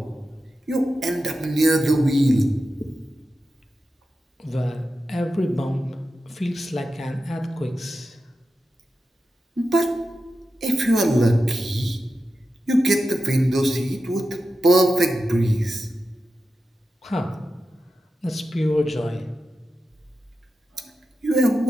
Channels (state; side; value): normal; both; correlation 0.91